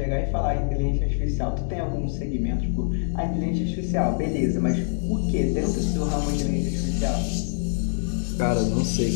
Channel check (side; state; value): right; silent; digital silence